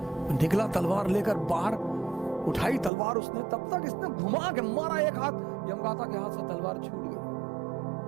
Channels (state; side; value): drops out; left; at 2.9 s